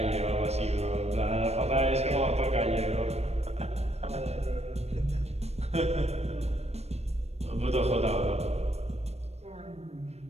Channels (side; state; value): left; late; 0.31 ms